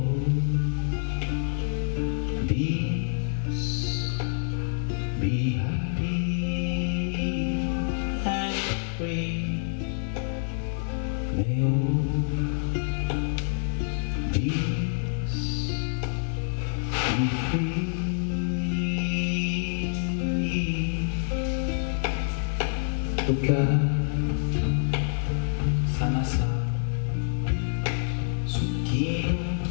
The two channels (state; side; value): silent; right; digital silence